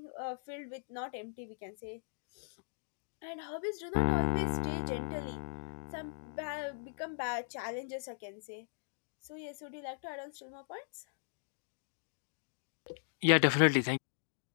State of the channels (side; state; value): right; silent; digital silence